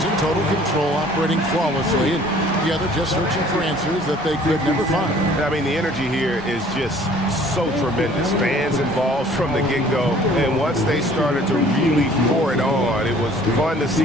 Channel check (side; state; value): both; normal; correlation 0.54